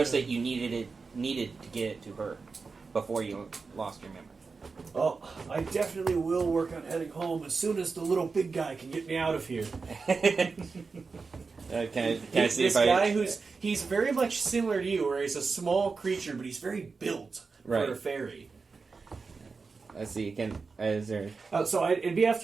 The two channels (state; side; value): quieter; left; 4.6 dB